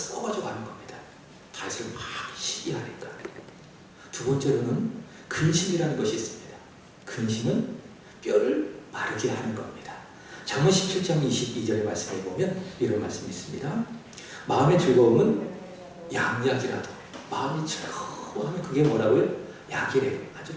가는 겁니다. 다윗을 막 시기하니까. 두 번째로는 근심이라는 것이 있습니다. 근심은 뼈를 마르게 하는 겁니다. 잠언 17장 22절의 말씀에 보면 이런 말씀이 있습니다. 마음의 즐거움은 양약이라도, 마음이 즐거워하면 그게 뭐라고요? 약이래요. 아주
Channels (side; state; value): both; identical; correlation 1.00